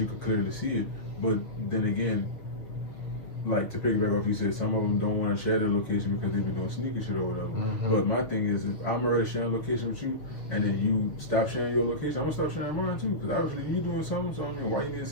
could clearly see it. But then again, like to piggyback off, you said some of them don't want to share their location because they be doing sneaky shit or whatever. But my thing is, if I'm already sharing location with you, and then you stop sharing your location, I'm gonna stop sharing mine too. Because obviously you doing something, so I mean, why you need to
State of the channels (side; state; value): right; late; 6.9 ms